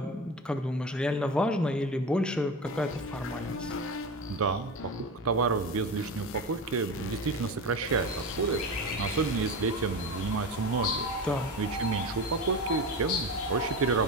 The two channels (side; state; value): both; normal; correlation 0.25